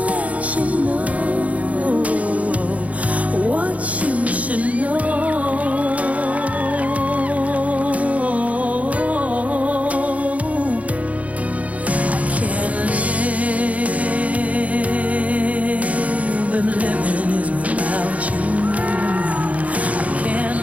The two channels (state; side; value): late; left; 0.068 ms